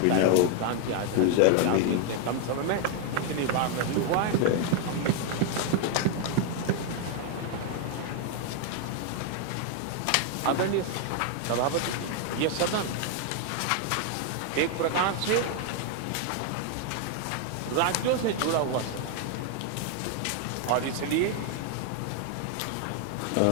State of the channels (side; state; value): both; different; correlation 0.01